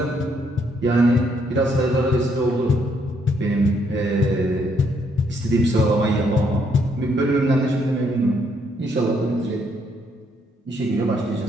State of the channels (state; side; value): normal; both; correlation 0.72